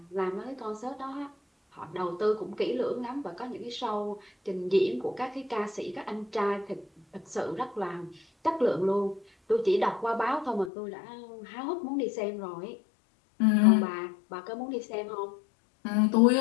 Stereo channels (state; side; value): drops out; right; at 10.7 s